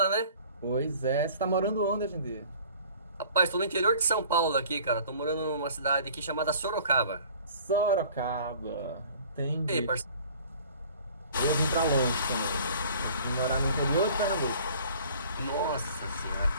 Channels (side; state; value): both; inverted; correlation -0.50